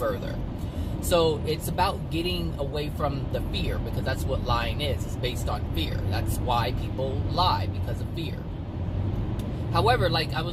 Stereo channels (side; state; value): both; identical; correlation 1.00